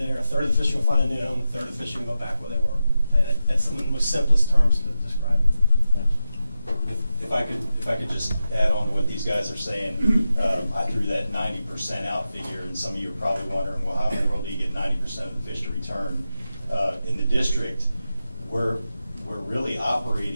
a third of the fish are going to find a new home, a third of the fish are going to go back where they were. And that's some of the most simplest terms to describe it. If I could just add on to what these guys are saying, I threw that 90% out figure, and some of you are probably wondering, well, how in the world do you get 90% of the fish to return? In the district, we're really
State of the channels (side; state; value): both; inverted; correlation -0.91